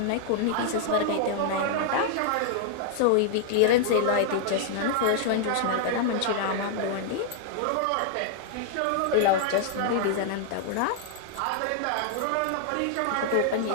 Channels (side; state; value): both; different; correlation -0.01